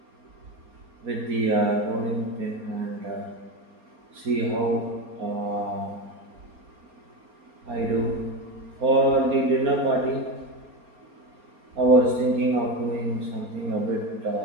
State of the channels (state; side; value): late; left; 4.3 ms